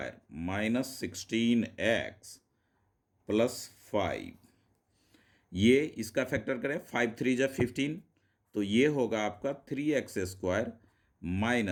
-16x +5। ये इसका फैक्टर करें, 5 3 जा 15, तो ये होगा आपका 3x²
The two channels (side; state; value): both; identical; correlation 1.00